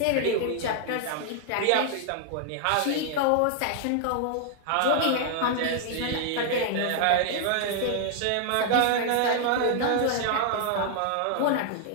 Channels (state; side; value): different; both; correlation 0.00